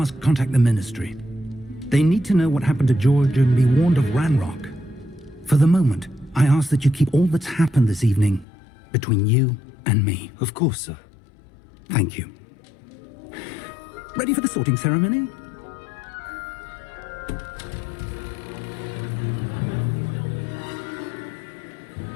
contact the Ministry. They need to know what happened to George and be warned of Ranrock. For the moment, I ask that you keep all that's happened this evening between you and me. Of course, sir. Thank you. Ready for the sorting ceremony?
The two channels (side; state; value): right; drops out; at 8.5 s